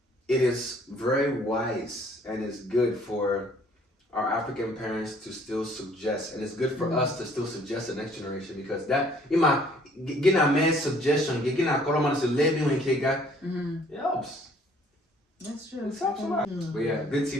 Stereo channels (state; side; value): normal; both; correlation 0.59